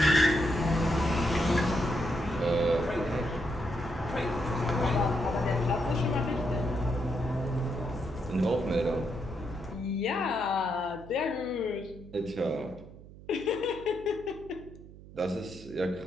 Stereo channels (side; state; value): right; noise; hum, 18 dB below the sound